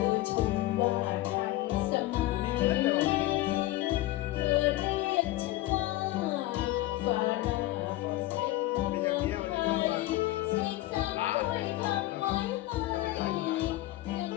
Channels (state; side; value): quieter; right; 16.5 dB